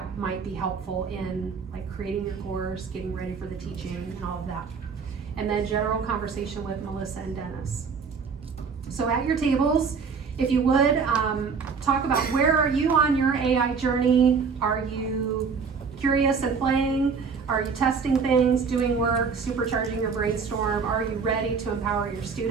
might be helpful in like creating your course, getting ready for the teaching and all of that. And then general conversation with Melissa and Dennis. So at your tables, if you would, talk about where are you on your AI journey? Are you curious and playing? Are you testing things, doing work, supercharging your brainstorm? Are you ready to empower your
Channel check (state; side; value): quieter; left; 5.5 dB